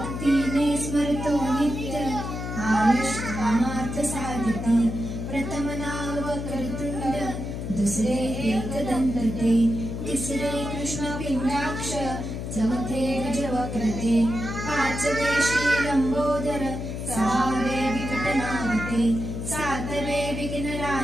स्मरतो नित्य आयुष कामार्थ साधिते प्रथम नाव वक्रतुंड दुसरे एकदंत ते तिसरे कृष्ण पिंडाक्ष चौथे गजवक्रते पाचवे श्री लंबोदर सहावे विकटनागते सातवे विघ्न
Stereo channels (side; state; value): left; noise; hum, 5 dB below the sound